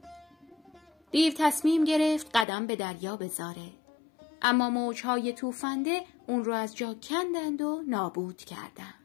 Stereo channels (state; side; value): drops out; right; at 2.5 s